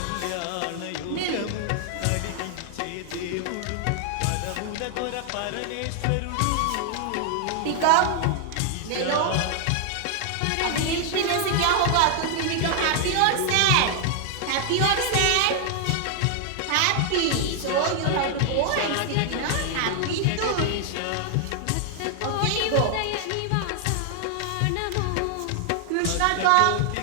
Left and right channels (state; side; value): different; both; correlation 0.00